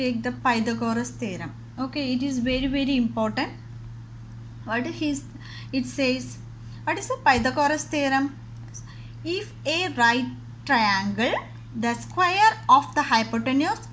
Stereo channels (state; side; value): identical; both; correlation 1.00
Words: the Pythagoras theorem. Okay, it is very important. What is it says? What is the Pythagoras theorem? If a right triangle, the square of the hypotenuse